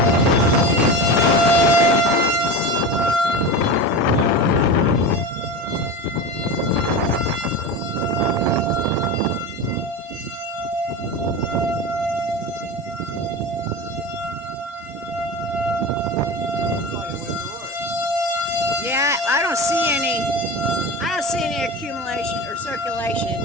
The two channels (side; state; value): both; normal; correlation 0.26